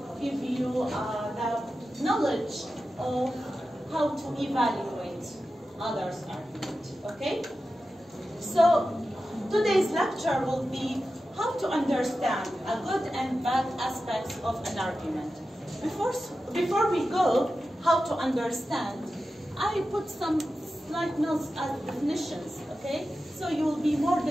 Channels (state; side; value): normal; both; correlation 0.92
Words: give you the knowledge of how to evaluate others' argument. Okay? So today's lecture will be how to understand a good and bad aspects of an argument. Before we go, how to understand, I put some slight notes as definitions, okay? So you will be more